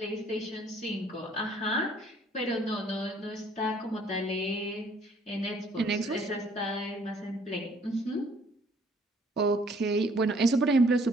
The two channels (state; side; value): normal; both; correlation 0.61